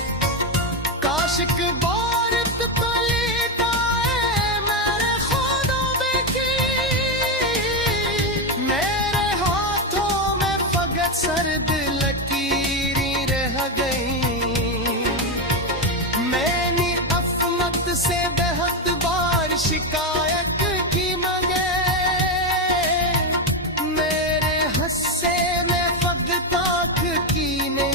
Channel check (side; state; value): both; normal; correlation 0.09